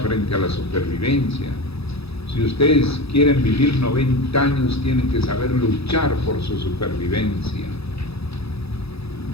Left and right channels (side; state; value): right; late; 0.78 ms